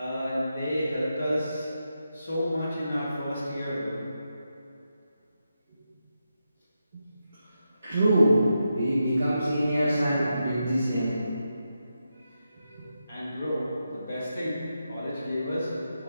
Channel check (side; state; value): both; inverted; correlation -0.87